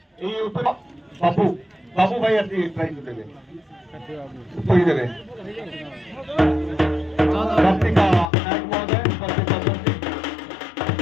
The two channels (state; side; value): drops out; right; at 8.2 s